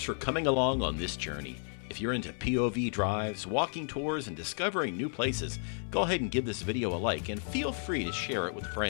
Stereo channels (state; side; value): silent; right; 56 dB below the other